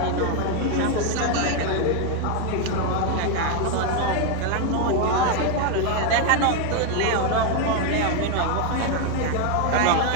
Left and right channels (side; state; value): both; different; correlation 0.01